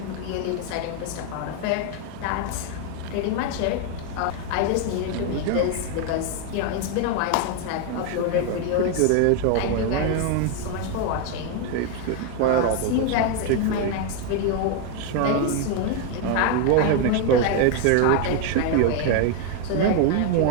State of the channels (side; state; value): both; different; correlation 0.01